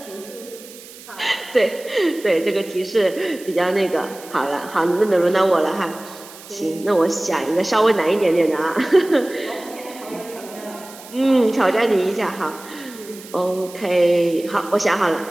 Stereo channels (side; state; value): right; noise; hiss, 18 dB below the sound